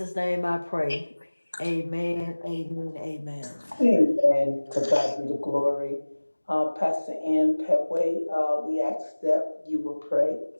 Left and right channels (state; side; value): inverted; both; correlation -1.00